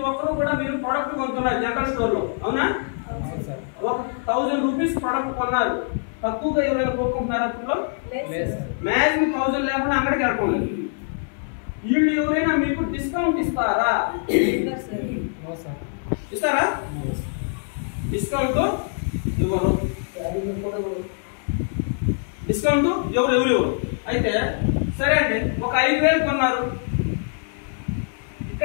ఒక్కరు కూడా మీరు ప్రొడక్ట్ కొంటున్నారు జనరల్ స్టోర్ లో, అవునా? 1000 రూపీస్ ప్రొడక్ట్ కొన్నారు, తక్కువగా ఎవరైనా కొనుక్కుంటున్నారు అప్పుడు మ్యాక్సిమం 1000 లేకుండా అంగడికి వెళ్ళకుండా. వీళ్ళు ఎవరైనా మీకు డిస్కౌంట్ ఇస్తారా? ఇస్తారా? డిస్కౌంట్ ఇవ్వరు. డిస్కౌంట్ ఎవరు. అయితే సరే అండి, ఒక 5000 కొన్నారు,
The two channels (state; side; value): silent; right; digital silence